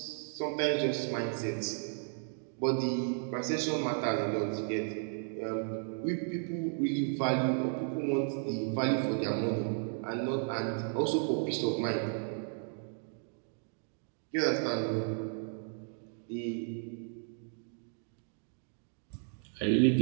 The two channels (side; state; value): left; silent; 55 dB below the other